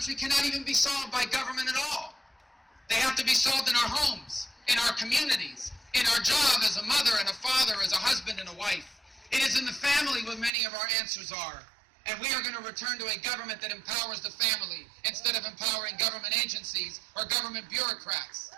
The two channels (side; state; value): left; drops out; at 10.5 s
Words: cannot even be solved by government at all. They have to be solved in our homes, in our communities, in our job as a mother and a father, as a husband and a wife. It is in the family where many of our answers are. And we are going to return to a government that empowers the family instead of empowering government agencies or government bureaucrats.